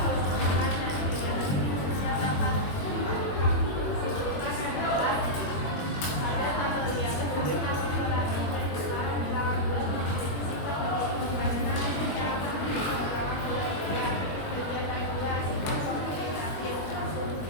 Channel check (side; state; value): right; late; 21 ms